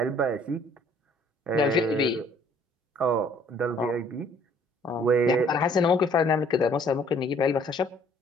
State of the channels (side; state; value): both; normal; correlation 0.58